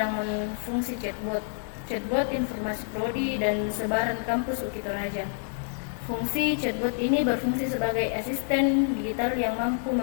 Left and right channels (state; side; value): silent; right; 59 dB below the other